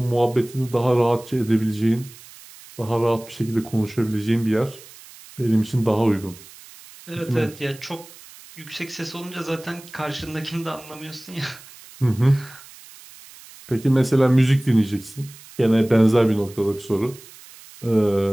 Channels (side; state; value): right; noise; hiss, 20 dB below the sound